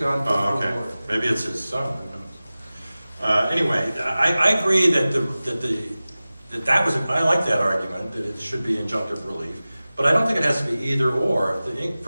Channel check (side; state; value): both; inverted; correlation -0.97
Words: to the okay. board. Maybe it's his son. Who knows? Anyway, I agree that that was. I like that argument that it should be injunctive relief, but I don't think it has to be either or. If the